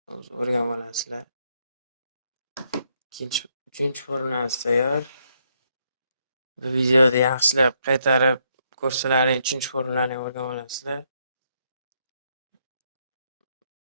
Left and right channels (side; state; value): both; inverted; correlation -0.74